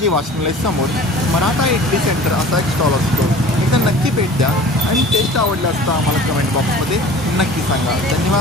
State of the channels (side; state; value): both; normal; correlation 0.43